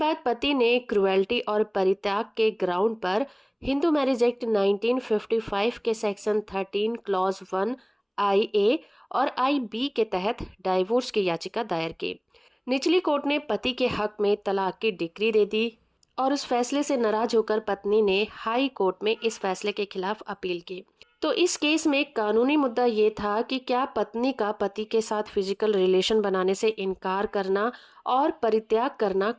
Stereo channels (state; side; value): identical; both; correlation 1.00